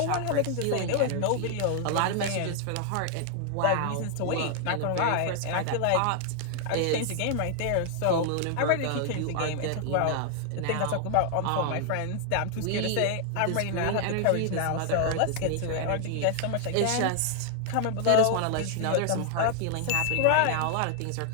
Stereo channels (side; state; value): both; different; correlation 0.00